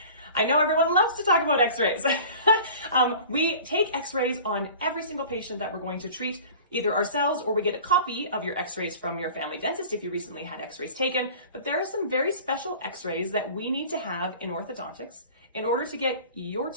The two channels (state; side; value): inverted; both; correlation -0.42